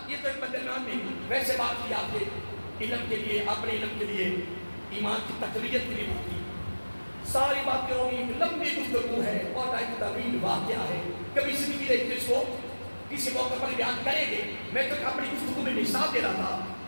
یہ تو ایک بدنام نہیں، ویسے بات کی آپ نے علم کے لیے، اپنے علم کے لیے، ایمان کی تقویت کے لیے بات کی. ساری باتیں ہوگی، لمبی گفتگو ہے اور ایک طویل واقعہ ہے، کبھی زندگی دیکھتے اس کو کسی موقع پر بیان کریں گے۔ میں تو اپنی گفتگو میں مثال دے رہا تھا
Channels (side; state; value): both; inverted; correlation -1.00